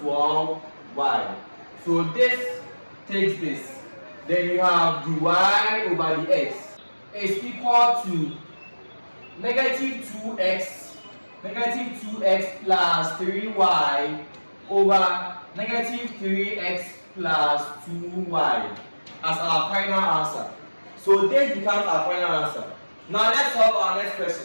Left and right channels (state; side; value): inverted; both; correlation -1.00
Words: So this takes this. Then you have the y over the x is equal to negative 2x plus 3y over negative 3x plus 2y as our final answer. So this becomes our final answer. Now let's solve our next